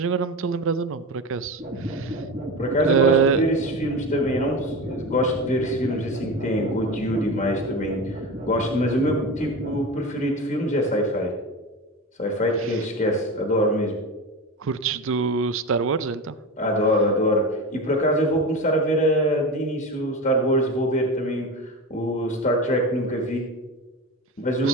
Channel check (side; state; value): both; normal; correlation 0.25